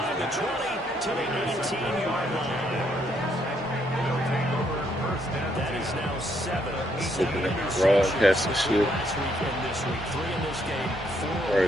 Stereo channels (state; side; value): normal; both; correlation 0.72